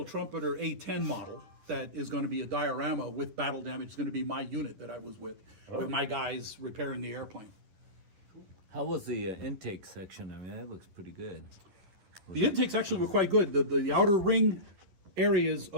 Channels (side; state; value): left; late; 11 ms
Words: Trumpeter A-10 model that is going to be a diorama with battle damage. It's going to be my unit that I was with my guys repairing the airplane. How was the intake section? I mean, that looks pretty good. The intakes actually were quite good. The outer ring areas